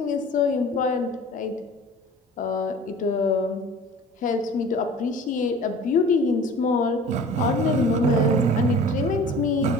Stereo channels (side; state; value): both; normal; correlation 0.43